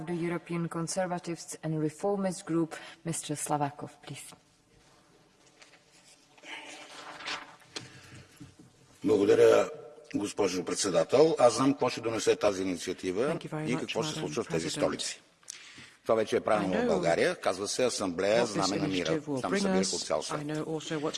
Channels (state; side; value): identical; both; correlation 1.00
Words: the European Conservatives and Reformist Group, Mr. Slavakov, please. Благодаря, госпожо председател. Аз знам какво ще донесе тази инициатива и какво се случва в тези столици. Това вече е правилно в България. Казва се Асамблея Знаме на мира. Там събира от цял свят.